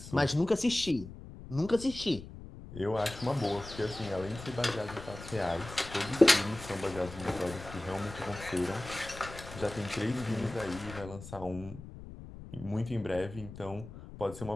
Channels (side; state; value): left; noise; rumble, 14 dB below the sound